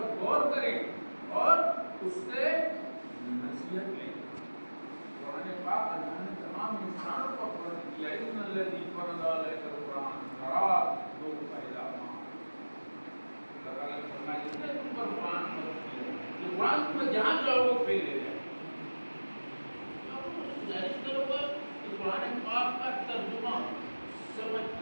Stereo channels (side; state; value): both; inverted; correlation -1.00